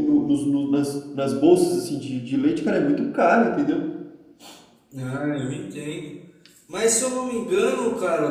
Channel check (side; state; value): both; identical; correlation 1.00